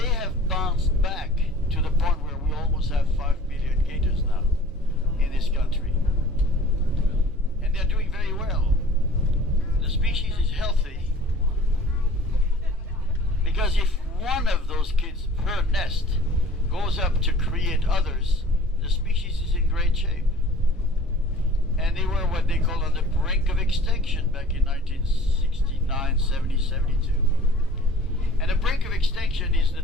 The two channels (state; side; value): normal; both; correlation 0.48